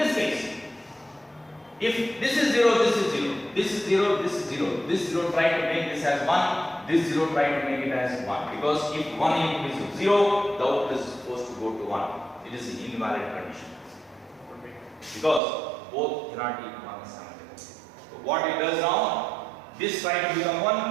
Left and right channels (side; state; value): left; drops out; at 15.4 s